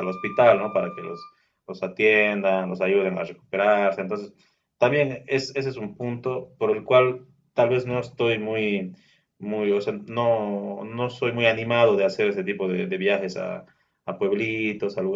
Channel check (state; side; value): identical; both; correlation 1.00